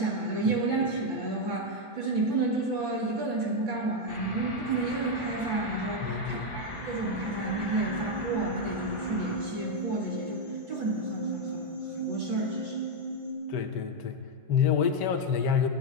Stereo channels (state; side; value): late; left; 1.5 ms